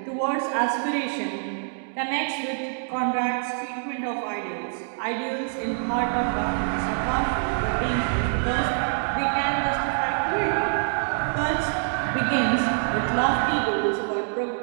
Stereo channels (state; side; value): silent; left; digital silence